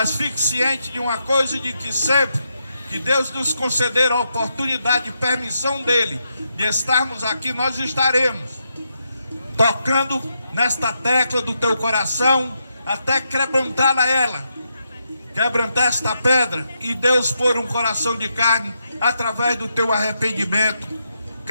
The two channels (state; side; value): inverted; both; correlation -0.82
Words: fique ciente de uma coisa, de que sempre que Deus nos conceder a oportunidade e permissão dele de estarmos aqui, nós estaremos tocando nesta tecla do teu coração até quebrantar ela, quebrantar esta pedra, e Deus pôr um coração de carne através do teu arrependimento,